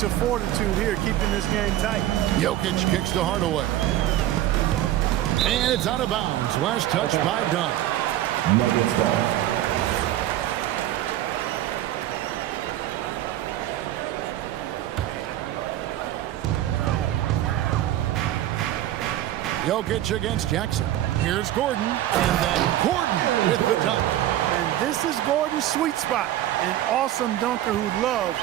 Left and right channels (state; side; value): quieter; left; 13.4 dB